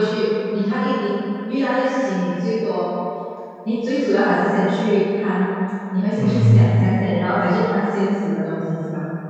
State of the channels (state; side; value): identical; both; correlation 1.00